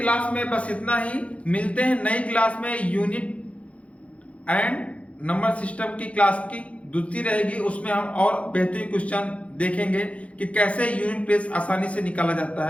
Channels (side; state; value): right; late; 0.063 ms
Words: में बस इतना ही। मिलते हैं नई क्लास में, यूनिट एंड नंबर सिस्टम की क्लास की दूसरी रहेगी, उसमें हम और बेहतरीन क्वेश्चन देखेंगे कि कैसे यूनिट प्लेस आसानी से निकाला जाता